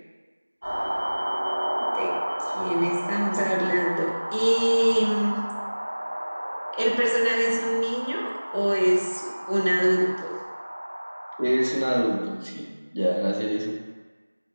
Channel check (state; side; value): inverted; both; correlation -1.00